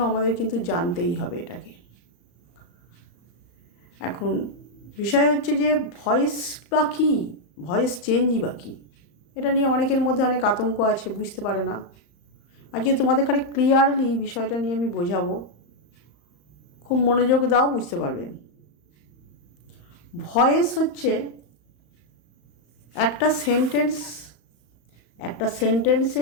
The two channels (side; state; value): right; late; 35 ms